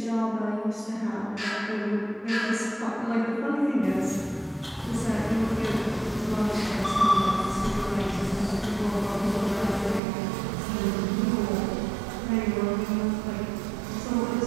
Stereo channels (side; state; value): left; drops out; at 10.0 s